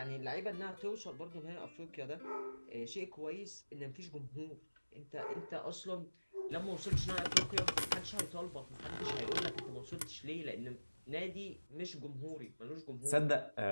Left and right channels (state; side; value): inverted; both; correlation -1.00